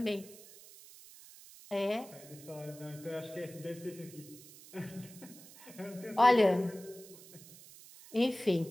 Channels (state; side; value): noise; right; hiss, 19 dB below the sound